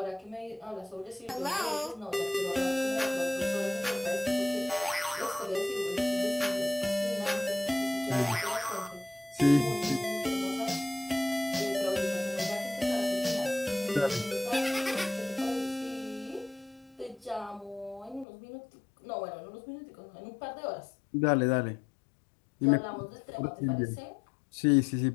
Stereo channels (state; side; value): drops out; right; at 18.2 s